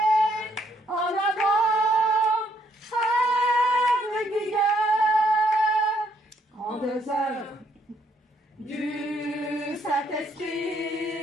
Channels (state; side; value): normal; both; correlation 0.71